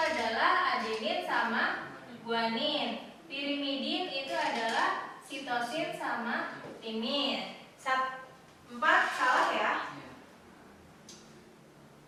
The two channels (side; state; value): both; identical; correlation 1.00